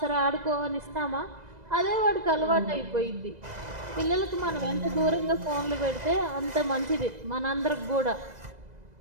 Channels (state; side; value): late; left; 2.0 ms